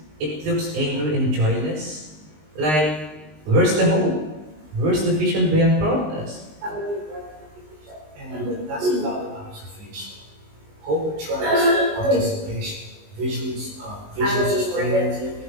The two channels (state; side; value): late; left; 19 ms